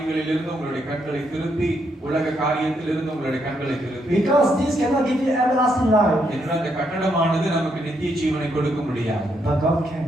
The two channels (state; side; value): normal; both; correlation 0.77